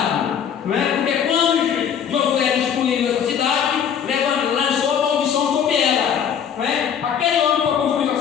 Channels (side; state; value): right; quieter; 8.2 dB